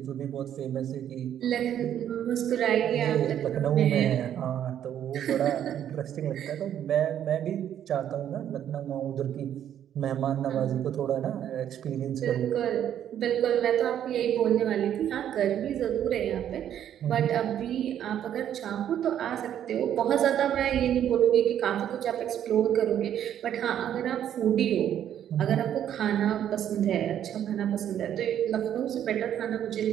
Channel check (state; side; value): quieter; left; 10.2 dB